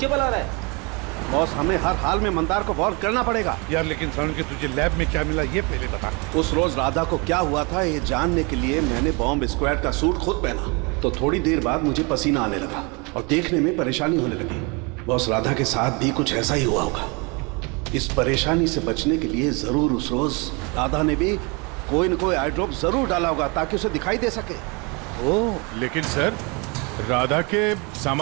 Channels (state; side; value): quieter; left; 30.0 dB